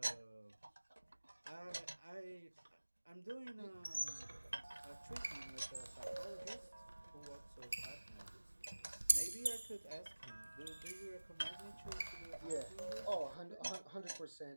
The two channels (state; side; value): inverted; both; correlation -1.00